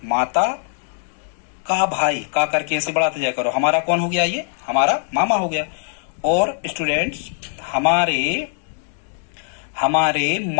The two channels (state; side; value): silent; right; digital silence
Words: माता का भाई, का करके ऐसे बढ़ाते जाया करो, हमारा कौन हो गया? ये हमारा मामा हो गया। और स्टूडेंट्स हमारे